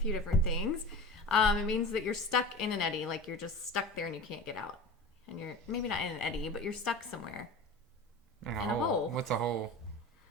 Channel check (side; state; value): both; normal; correlation 0.33